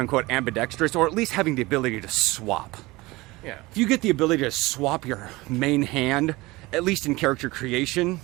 ambidextrous, or at least having the ability to swap. Yeah. If you get the ability to swap your main hand, at least in character creation,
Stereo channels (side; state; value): left; quieter; 21.2 dB